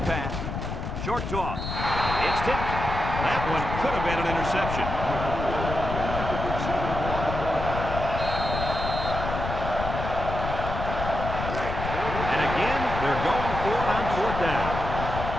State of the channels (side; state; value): left; noise; rumble, 5 dB below the sound